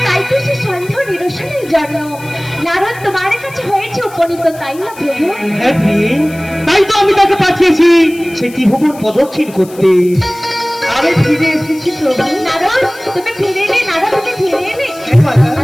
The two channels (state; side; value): noise; left; hiss, 21 dB below the sound